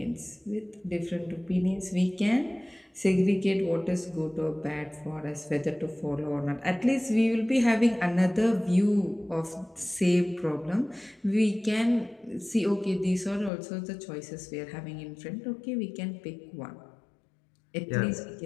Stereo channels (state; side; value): drops out; right; at 13.5 s